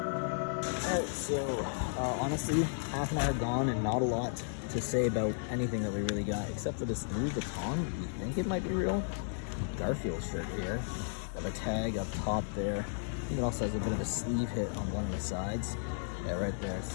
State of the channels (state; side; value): silent; right; digital silence